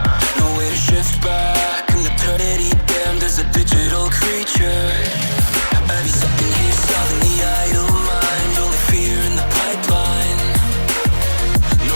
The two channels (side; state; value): both; inverted; correlation -1.00